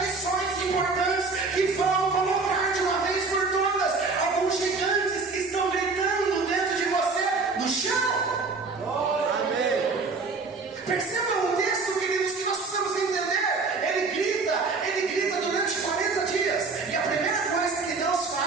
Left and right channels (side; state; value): left; quieter; 4.2 dB